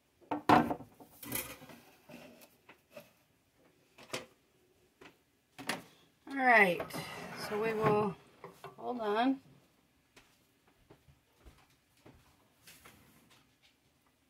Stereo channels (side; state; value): both; identical; correlation 1.00